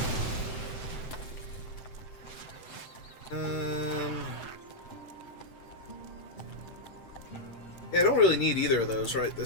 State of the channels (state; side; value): late; right; 7.9 ms